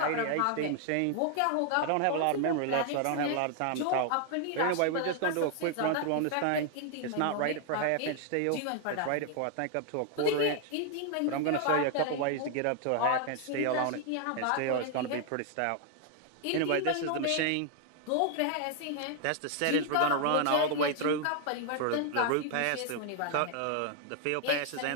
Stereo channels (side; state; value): both; different; correlation 0.00